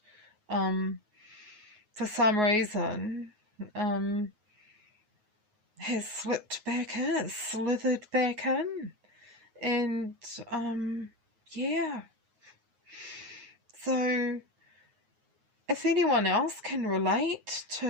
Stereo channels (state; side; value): late; left; 9.5 ms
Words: for some reason has slipped back in, slithered back in. And yeah. So if anyone else can relate